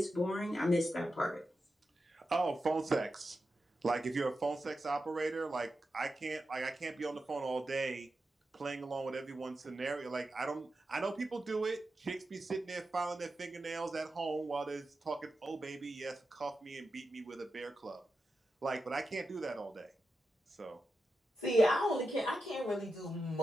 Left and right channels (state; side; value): normal; both; correlation 0.89